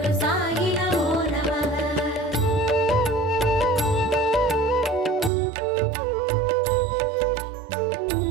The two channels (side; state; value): left; drops out; at 5.3 s